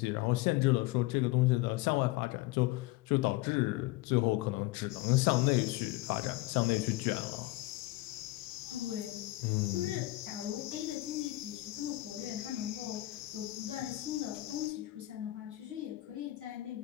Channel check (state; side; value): quieter; right; 18.6 dB